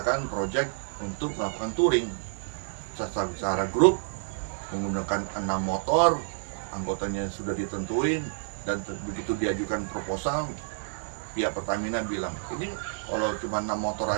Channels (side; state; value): left; silent; digital silence